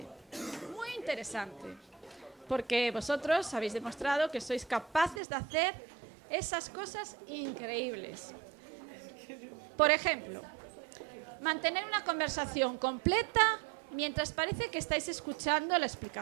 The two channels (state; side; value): drops out; left; at 5.2 s